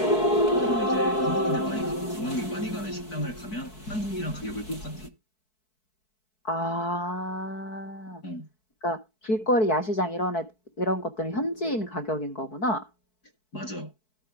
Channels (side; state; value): right; late; 4.6 ms